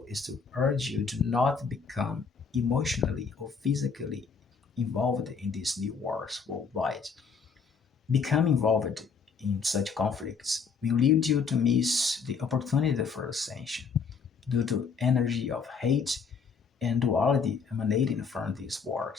is to urge you to not become emotionally or physically involved in these new wars worldwide. Become involved in such conflicts will lead you to miss the opportunity for ascension due to energy of hate and duality emanating from these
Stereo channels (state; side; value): quieter; right; 5.6 dB